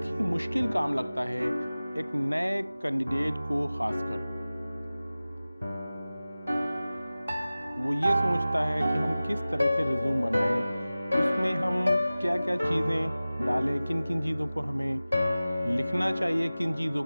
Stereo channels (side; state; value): both; inverted; correlation -0.97